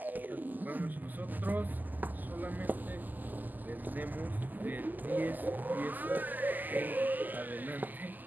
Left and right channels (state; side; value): late; left; 0.085 ms